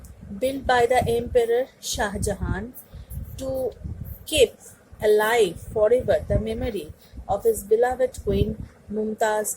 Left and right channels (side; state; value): both; identical; correlation 1.00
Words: built by the Emperor Shah Jahan to keep alive forever the memory of his beloved queen